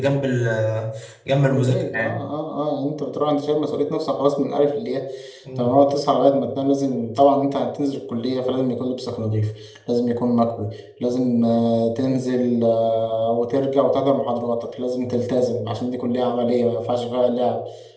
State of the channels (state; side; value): identical; both; correlation 1.00